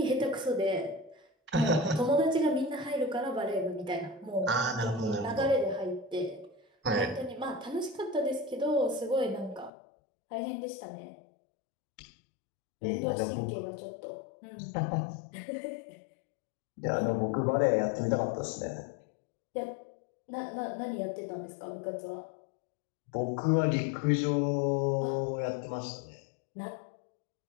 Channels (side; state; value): right; drops out; at 9.7 s